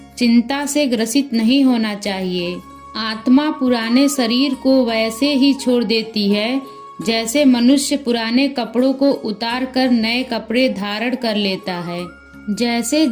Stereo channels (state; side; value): identical; both; correlation 1.00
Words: चिंता से ग्रसित नहीं होना चाहिए। आत्मा पुराने शरीर को वैसे ही छोड़ देती है जैसे मनुष्य पुराने कपड़ों को उतार कर नए कपड़े धारण कर लेता है। जैसे